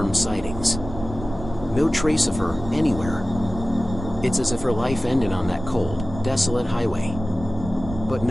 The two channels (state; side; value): noise; right; rumble, 11 dB below the sound